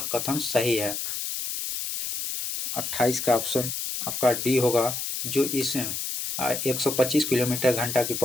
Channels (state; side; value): noise; left; hiss, 4 dB below the sound